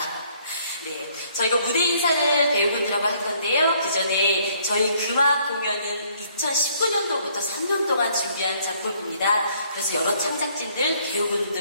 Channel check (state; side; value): inverted; both; correlation -0.64